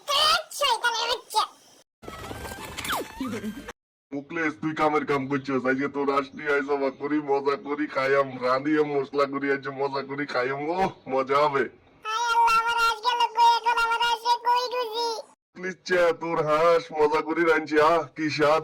শয়তানের বাচ্চা। মুকলেশ তুই কামের কাম করছিস। আজকে তোর আসলি আইসা করি মজা করি খাইয়াম, রাঁধিয়ে মশলা করি আজ মজা করি খাইয়াম। ও মজা হবে। হায় আল্লাহ, আমার আজ গেল কই, এখন আমার আসে কই খুঁজি। মুকলেশ চা তোর হাঁস মজা করি রাঁধছি। কি স্বাদ,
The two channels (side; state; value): both; identical; correlation 1.00